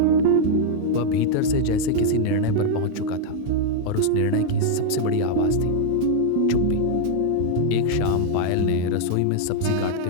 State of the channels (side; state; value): both; different; correlation 0.00